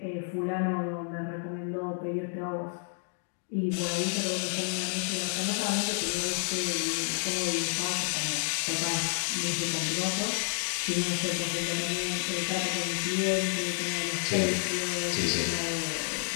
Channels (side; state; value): right; silent; 58 dB below the other